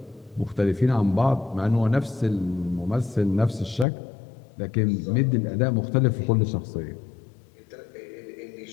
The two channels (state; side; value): drops out; right; at 3.9 s